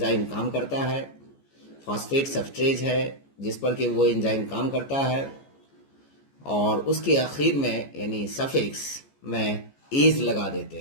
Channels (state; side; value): late; right; 14 ms